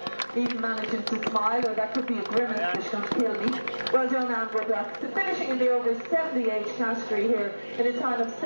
Even managing to smile, or that could be a grimace that's going to kill me. Well done, Anne Woodlock. So finishing in the over 70 age category here in a time of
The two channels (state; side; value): inverted; both; correlation -1.00